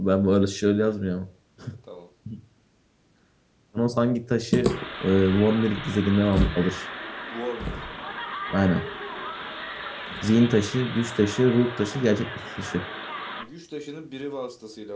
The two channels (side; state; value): both; identical; correlation 1.00